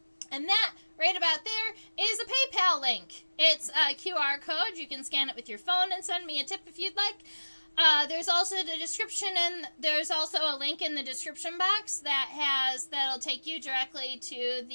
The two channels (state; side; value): inverted; both; correlation -1.00